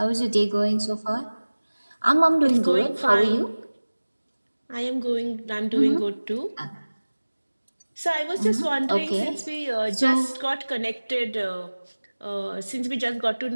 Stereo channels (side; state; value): both; inverted; correlation -1.00